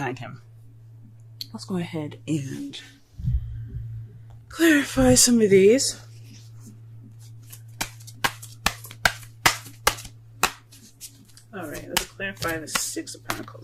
him. Let's go ahead and clarify some of these. Alright, let's clarify the Six of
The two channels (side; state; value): both; identical; correlation 1.00